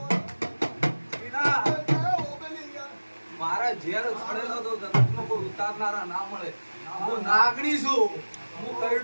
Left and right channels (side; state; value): both; inverted; correlation -1.00